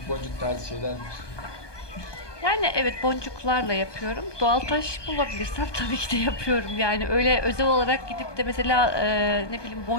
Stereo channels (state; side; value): late; right; 1.2 ms